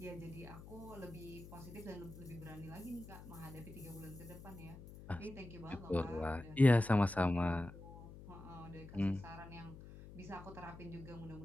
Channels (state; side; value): noise; left; hum, 15 dB below the sound